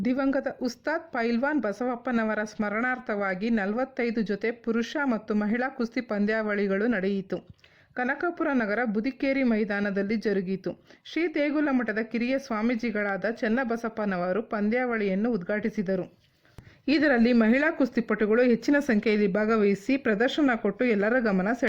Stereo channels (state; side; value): identical; both; correlation 1.00